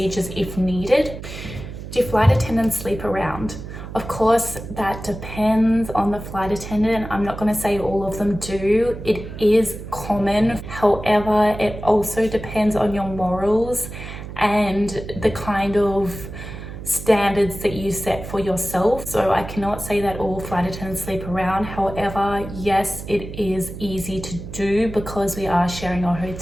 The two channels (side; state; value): right; noise; hum, 11 dB below the sound